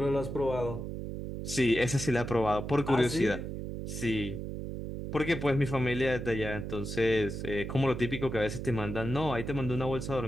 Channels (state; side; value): noise; right; hum, 6 dB below the sound